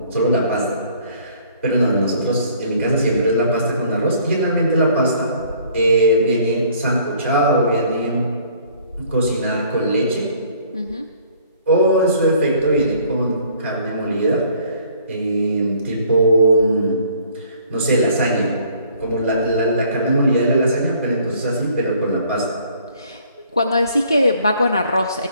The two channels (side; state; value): both; inverted; correlation -0.58